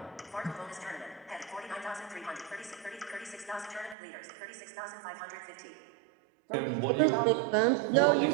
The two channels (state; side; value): drops out; left; at 4.0 s